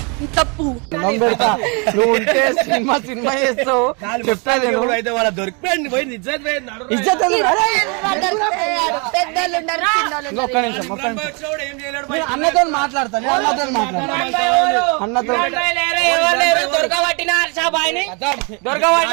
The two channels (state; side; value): quieter; left; 33.4 dB